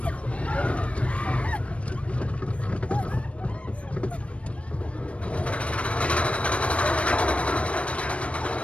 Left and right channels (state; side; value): late; right; 0.062 ms